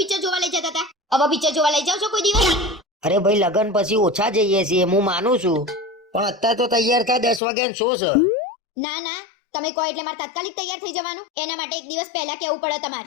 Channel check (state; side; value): drops out; right; at 7.4 s